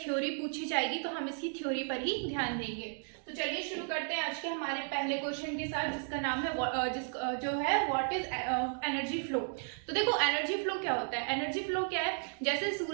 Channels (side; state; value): left; silent; 55 dB below the other